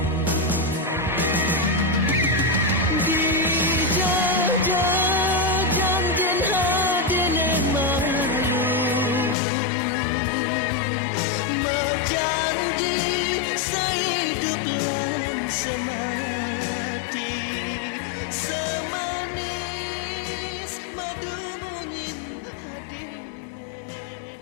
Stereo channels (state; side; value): drops out; right; at 9.3 s